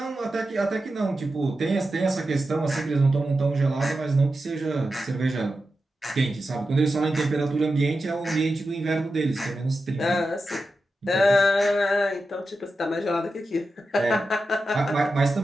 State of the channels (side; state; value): both; normal; correlation 0.90